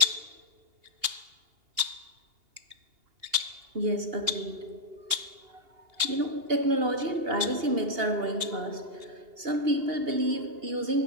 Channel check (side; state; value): left; late; 2.8 ms